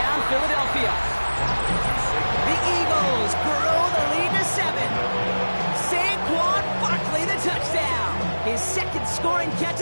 Philadelphia. The Eagles grow the lead to 7. Saquon Barkley the touchdown. His 2nd scoring catch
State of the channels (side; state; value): both; inverted; correlation -1.00